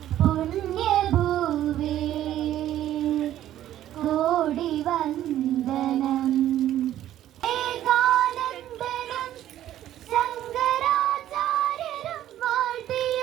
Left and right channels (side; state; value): left; quieter; 12.5 dB